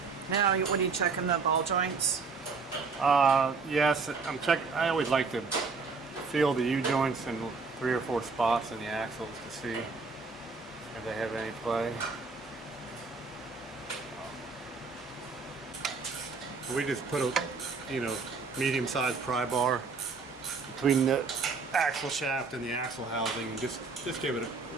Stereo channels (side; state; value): left; quieter; 4.6 dB